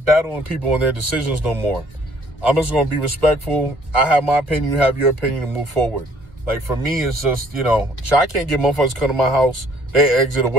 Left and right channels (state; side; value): late; left; 1.5 ms